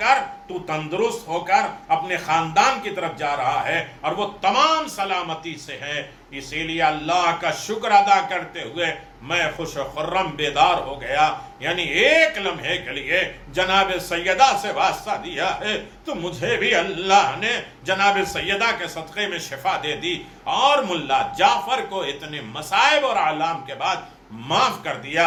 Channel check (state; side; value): identical; both; correlation 1.00